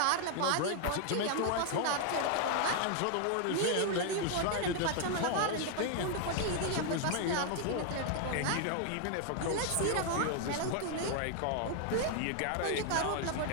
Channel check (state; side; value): different; both; correlation 0.00